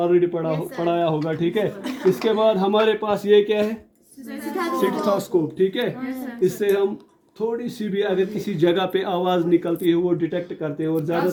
पढ़ाया होगा, ठीक है। इसके बाद हमारे पास ये क्या है, स्टेथोस्कोप, ठीक है। इससे हम थोड़ी सी भी अगर किसी जगह पे आवाज़ निकलती है वो डिटेक्ट करते हैं, और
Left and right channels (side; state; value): both; identical; correlation 1.00